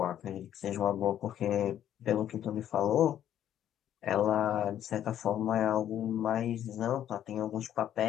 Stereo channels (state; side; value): quieter; right; 10.8 dB